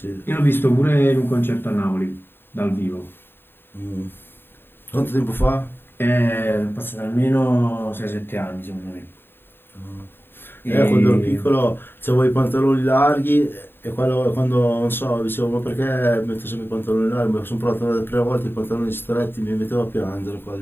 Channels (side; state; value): right; late; 0.10 ms